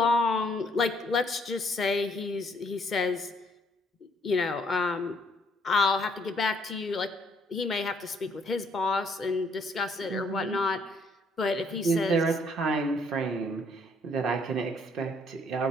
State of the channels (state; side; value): normal; both; correlation 0.67